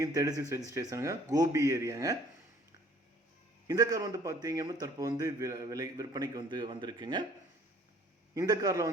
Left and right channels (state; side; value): normal; both; correlation 0.55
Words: ரெஜிஸ்ட்ரேஷனுங்க. கோபி ஏரியாங்க. இந்த கார் பார்த்தீங்க அப்படின்னா தற்போது விற்பனைக்கு வந்திருக்குங்க. இந்த